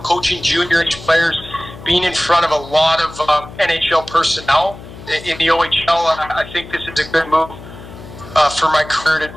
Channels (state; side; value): noise; left; hum, 15 dB below the sound